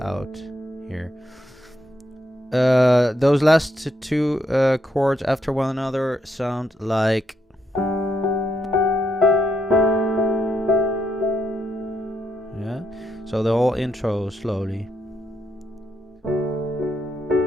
here. Those last two chords after one another sound like. Yeah. So the whole intro slowly.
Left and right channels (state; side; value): normal; both; correlation 0.78